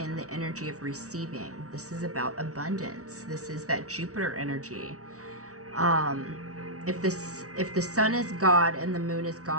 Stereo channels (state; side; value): late; left; 0.66 ms